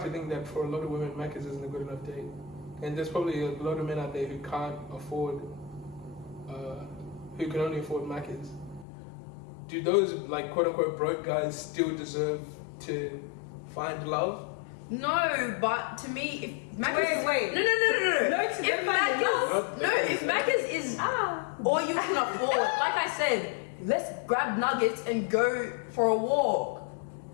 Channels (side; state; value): right; drops out; at 8.8 s